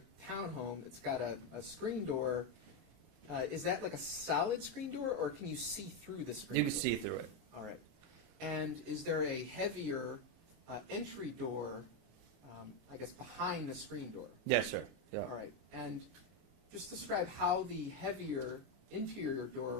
townhome, it's got a screen door. Is that like a solid screen door, or can you see through the screen You door? can see through it. All right. And is there a heavier entry door, I guess, behind the screen door? Yes, sir. Yeah. All right. And just describe how the heavier interior door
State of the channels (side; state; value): left; late; 33 ms